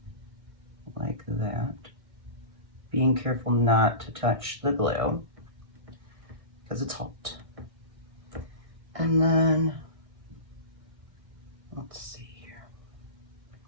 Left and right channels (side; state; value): left; late; 1.6 ms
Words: Like that. Being careful not to touch the glue because it's hot. And then, let's see here.